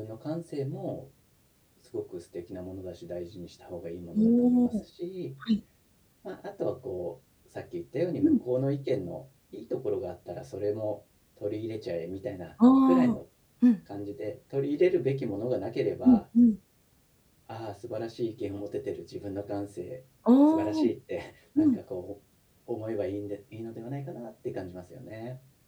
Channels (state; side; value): identical; both; correlation 1.00